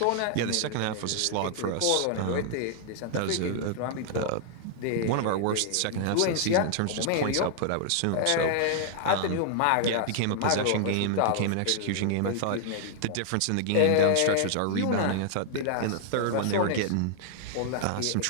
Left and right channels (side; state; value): both; different; correlation -0.01